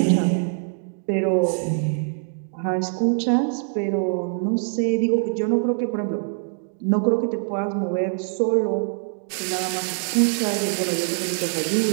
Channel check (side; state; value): left; silent; 63 dB below the other